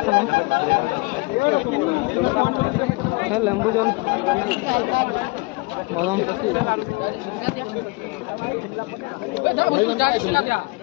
है लेम्बू जल बादाम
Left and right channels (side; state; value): right; quieter; 26.1 dB